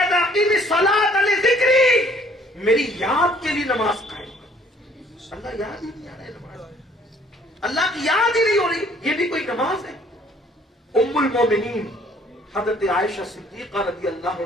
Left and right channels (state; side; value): normal; both; correlation 0.59